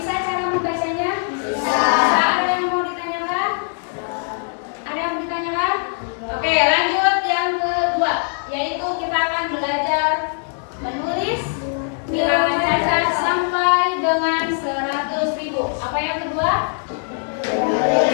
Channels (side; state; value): right; silent; 61 dB below the other